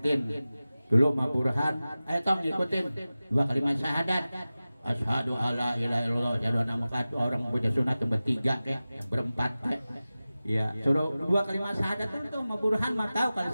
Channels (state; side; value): inverted; both; correlation -0.96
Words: dulu Ma Burhan, tong ngikutin 2 kalimat syahadat. Asyhadu alla ilaha illallah, asyhadu anna Muhammad, orang punya sunat bertiga kayak berempat kayak. Ya, suruh 2 kalimat syahadat itu mah Burhan mah tahu kalau